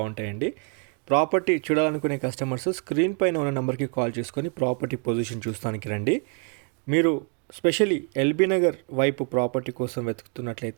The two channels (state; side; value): quieter; left; 36.6 dB